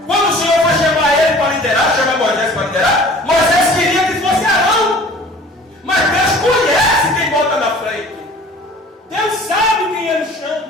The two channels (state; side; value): normal; both; correlation 0.47